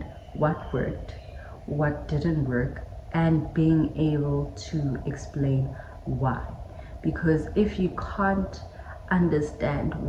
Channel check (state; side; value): identical; both; correlation 1.00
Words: what worked, what didn't work, and being able to explain why. Because if you can't understand